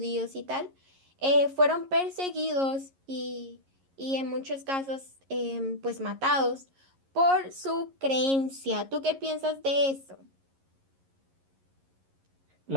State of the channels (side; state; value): left; late; 11 ms